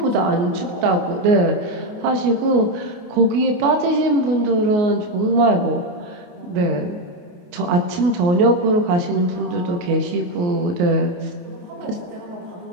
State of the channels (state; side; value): late; left; 28 ms